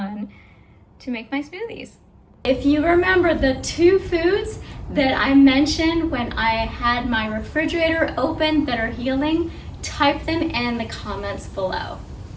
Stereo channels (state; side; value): identical; both; correlation 1.00